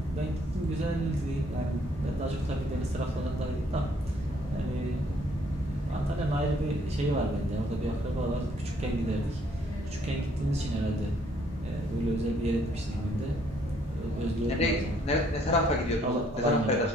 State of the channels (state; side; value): normal; both; correlation 0.65